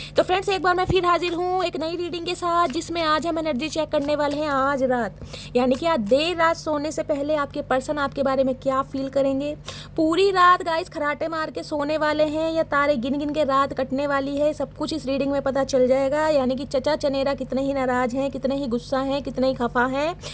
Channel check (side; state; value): both; identical; correlation 1.00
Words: तो फ्रेंड्स एक बार मैं फिर हाजिर हूँ एक नई रीडिंग के साथ, जिसमें आज हम एनर्जी चेक करने वाले हैं आज रात, यानी कि आज देर रात सोने से पहले आपके पर्सन आपके बारे में क्या फील करेंगे। पूरी रात गाइस खराटे मार के सोने वाले हैं या तारे गिन गिन के रात कटने वाली है, सब कुछ इस रीडिंग में पता चल जाएगा। यानी कि चचा चनेरा कितने ही नाराज हैं, कितने ही गुस्सा हैं, कितने ही खफा हैं,